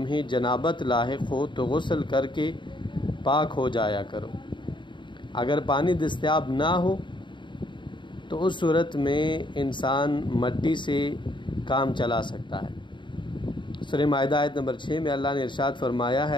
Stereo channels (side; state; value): right; late; 0.23 ms